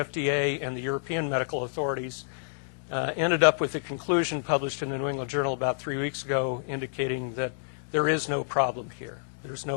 and the European medical authorities ended up with a conclusion published in the New England Journal about 3 weeks ago indicating that there is no problem here. There's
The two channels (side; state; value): right; silent; digital silence